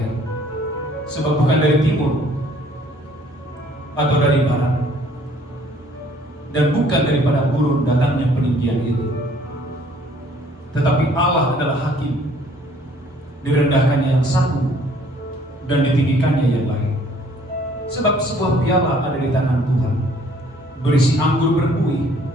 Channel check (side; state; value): both; normal; correlation 0.59